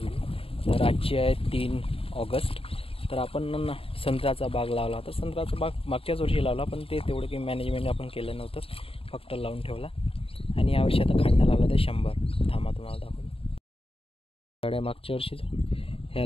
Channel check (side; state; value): right; late; 0.27 ms